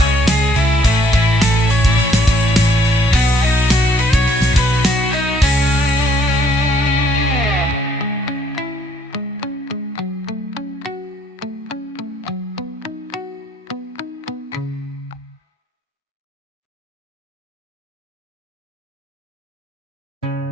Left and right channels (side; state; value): both; normal; correlation 0.64